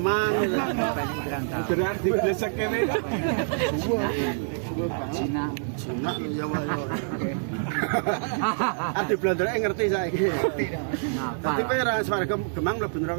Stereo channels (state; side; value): silent; left; 61 dB below the other